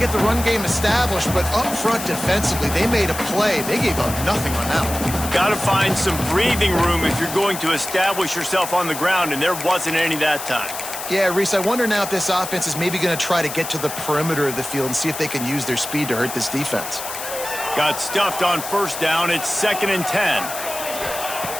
the run game established, but up front defensively, they made a play. They gave up nothing on that one. Got to find some breathing room if you're going to establish yourself on the ground, and there wasn't any that time. Yeah, Reese, I wonder now if this offense is maybe going to try to get to the perimeter of the field and see if they can use their speed to hurt this defense. Got stuffed on first down. It's 2nd and 10.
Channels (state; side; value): noise; left; hiss, 8 dB below the sound